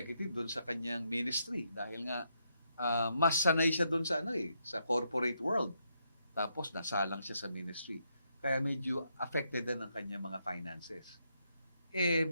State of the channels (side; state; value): both; inverted; correlation -0.79